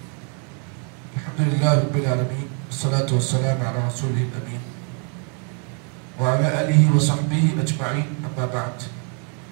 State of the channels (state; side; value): quieter; left; 39.9 dB